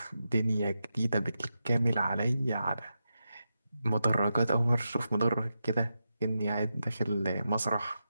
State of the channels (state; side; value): inverted; both; correlation -0.88